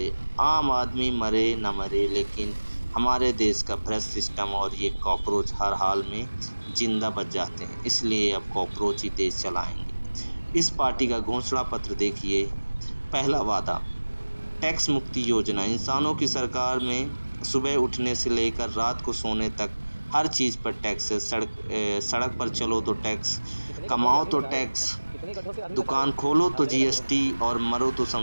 आम आदमी मरे न मरे, लेकिन हमारे देश का भ्रष्ट सिस्टम और ये कॉकरोच हर हाल में जिंदा बच जाते हैं। इसलिए अब कॉकरोच ही देश चलाएंगे। इस पार्टी का घोषणा पत्र देखिए। पहला वादा, टैक्स मुक्ति योजना। इंसानों की सरकार में सुबह उठने से लेकर रात को सोने तक हर चीज़ पर टैक्स है। सड़क पर चलो तो टैक्स, कमाओ तो टैक्स, दुकान खोलो तो जीएसटी और मरो तो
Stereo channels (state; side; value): inverted; both; correlation -1.00